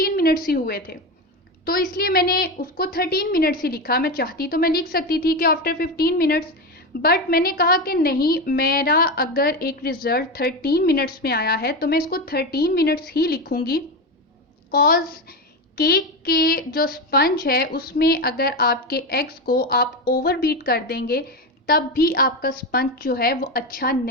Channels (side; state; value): both; normal; correlation 0.17